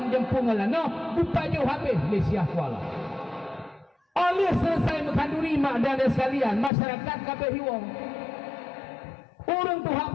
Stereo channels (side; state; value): right; drops out; at 6.7 s